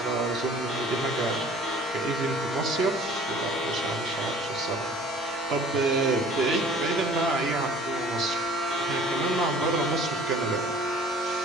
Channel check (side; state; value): both; normal; correlation 0.50